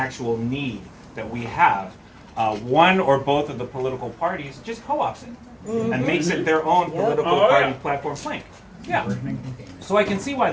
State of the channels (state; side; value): identical; both; correlation 1.00